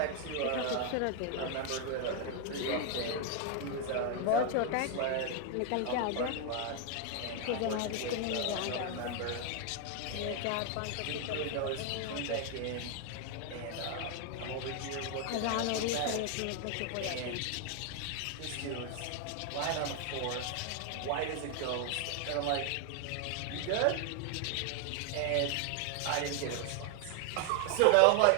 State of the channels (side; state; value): both; different; correlation 0.00